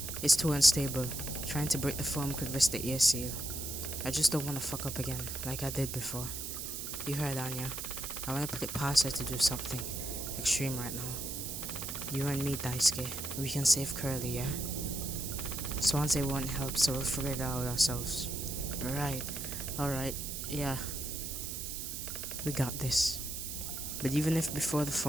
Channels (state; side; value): noise; right; hiss, 5 dB below the sound